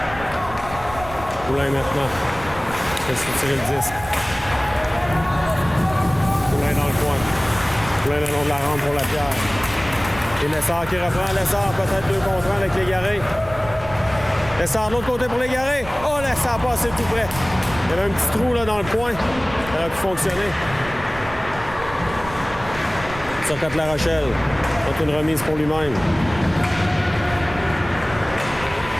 Poulain maintenant. Fait tirer le disque. Poulain dans le coin. Poulain le long de la rampe pour Lapierre. Et Lessard qui reprend. Lessard peut-être 2 contre 1 avec Légaré. Lessard de l'autre côté pour Légaré. Oh, Lessard passé tout près. Il y avait un petit trou là dans le coin. Ça aurait pu fonctionner. Sur La Rochelle. C'est une remise pour lui-même.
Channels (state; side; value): noise; right; rumble, 14 dB below the sound